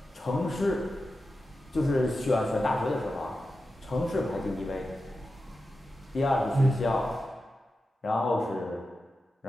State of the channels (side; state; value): both; normal; correlation 0.91